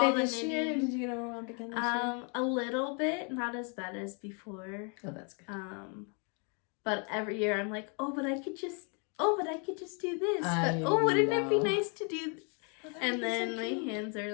the this knitting. year? Did you get overwhelmed again this year? A little bit, not as bad as before. Oh, that's good. But every year I'm like, but I could just do this. But wouldn't it be nice to do this? And then my hands are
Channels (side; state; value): right; quieter; 37.6 dB